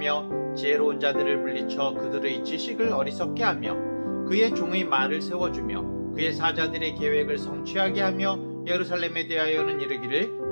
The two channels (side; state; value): both; inverted; correlation -1.00